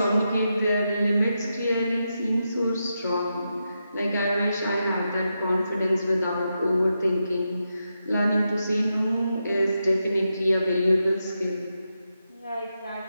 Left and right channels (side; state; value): both; inverted; correlation -0.86